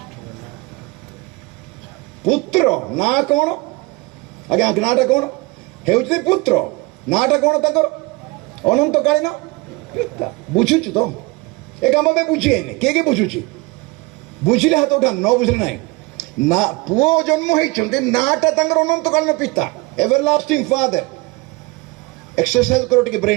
ପୁତ୍ର ନାଁ କ'ଣ? ଆଜ୍ଞା ନାଁଟା କ'ଣ? ହେଉଛି ପୁତ୍ର, ନାଁଟା କ'ଣ ତାଙ୍କର? ଅନନ୍ତକାଳୀନ ପିତା। ବୁଝୁଛୁ ତ? ଏ କାମ ପାଇଁ ବୁଝିଏନି। କିଏ କିଏ ବୁଝୁଛି? ବୁଝିଲେ ହାତ ଉଠାନ୍ତୁ, ନ ବୁଝିଲେ ନାହିଁ। ନା, ପୁଅ ଜନ୍ମ ହେଇଛନ୍ତି, ନାଁଟା ତାଙ୍କର ଅନନ୍ତକାଳୀନ ପିତା, ଏଭରଲାଷ୍ଟିଂ ଫାଦର। ଏକ୍ସରସାଇଜ କର ଟିକେ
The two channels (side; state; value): left; quieter; 24.2 dB